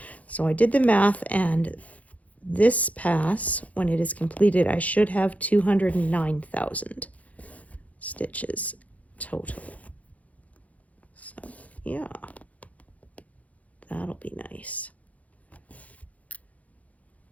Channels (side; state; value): right; late; 0.070 ms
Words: So I did the math, and this pass, when it is completed, I should have 209,000. stitches total. So yeah, that'll be nice.